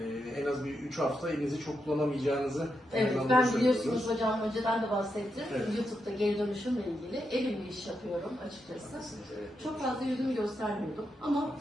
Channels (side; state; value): both; normal; correlation 0.84